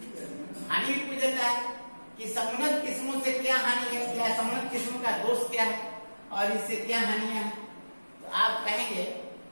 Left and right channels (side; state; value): both; inverted; correlation -1.00